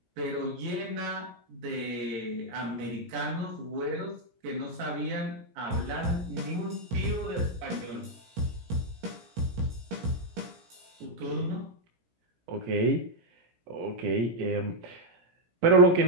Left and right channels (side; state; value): left; late; 17 ms